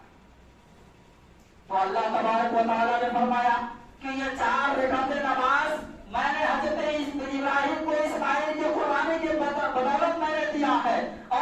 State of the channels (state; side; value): identical; both; correlation 1.00